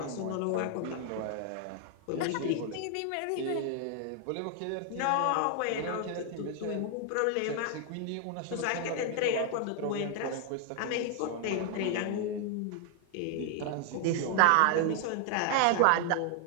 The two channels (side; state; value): both; different; correlation 0.00